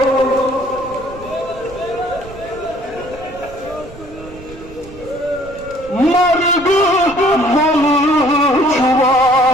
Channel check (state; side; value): noise; right; rumble, 18 dB below the sound